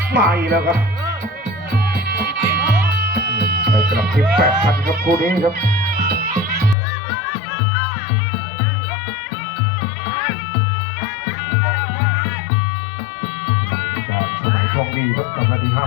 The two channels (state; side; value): drops out; right; at 6.8 s